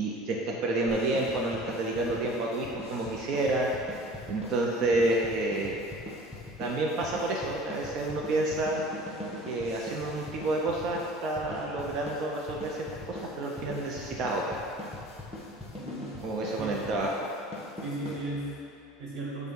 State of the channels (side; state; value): both; normal; correlation 0.44